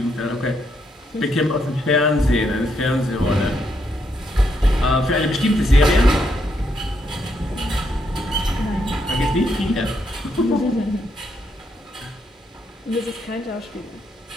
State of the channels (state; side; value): normal; both; correlation 0.77